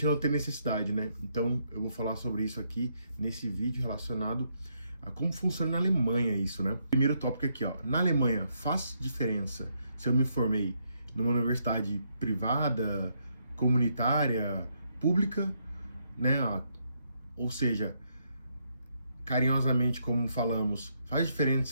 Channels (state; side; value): inverted; both; correlation -0.76